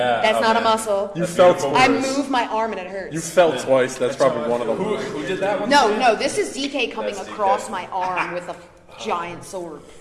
that's not a muscle. You felt I moved my arm and it hurts. You felt twice. That's probably one of them. Who did that one? No, this is DK coming That's across DK. my arm with a giant sword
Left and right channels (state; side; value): identical; both; correlation 1.00